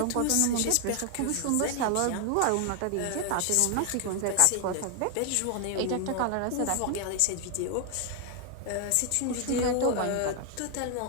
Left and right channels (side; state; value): both; different; correlation 0.00